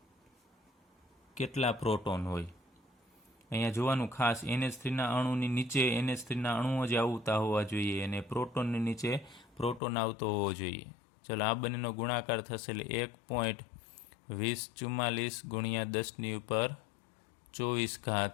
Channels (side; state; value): right; drops out; at 9.8 s